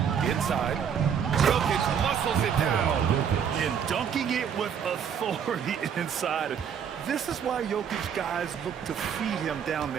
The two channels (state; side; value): quieter; left; 7.8 dB